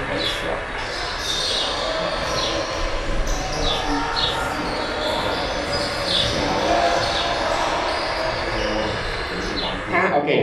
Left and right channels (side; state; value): both; identical; correlation 1.00